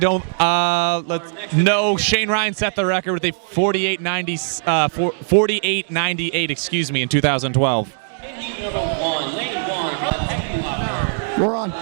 No, Shane Ryan set the record with a 48.98. Excuse me, in 2012. We're on.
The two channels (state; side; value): silent; left; digital silence